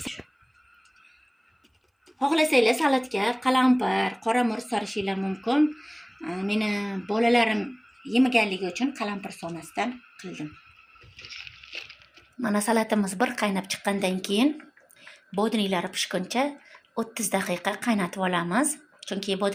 xohlasanglar salatga qalampir, qora murch solishinglar mumkin. Meni bolalarim yemaganligi uchun qalampir solmasdan qildim. Mana salatimiz bir qaynab chiqqandan keyin bodringlari pishguncha 30 daqiqa qaynatib olamiz. Chunki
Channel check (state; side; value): identical; both; correlation 1.00